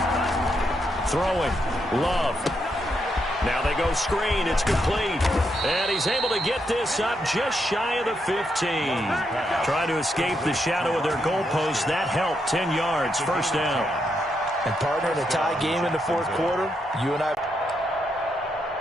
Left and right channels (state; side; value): normal; both; correlation 0.80